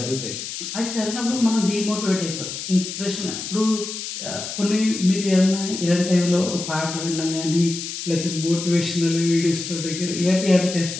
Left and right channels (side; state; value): left; noise; hiss, 7 dB below the sound